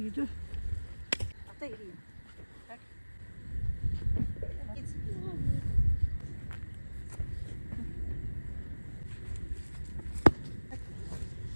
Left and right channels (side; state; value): both; inverted; correlation -1.00